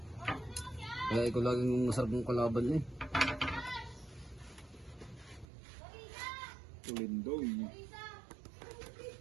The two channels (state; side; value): drops out; left; at 5.5 s